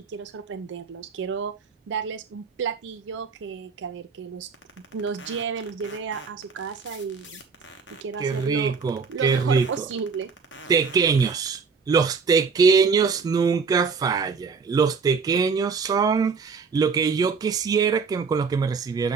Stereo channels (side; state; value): left; quieter; 5.3 dB